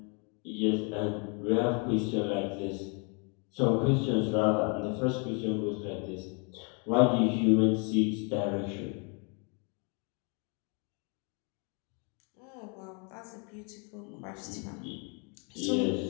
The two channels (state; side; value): quieter; right; 35.5 dB